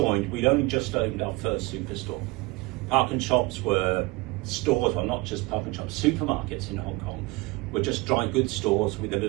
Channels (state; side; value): quieter; left; 23.6 dB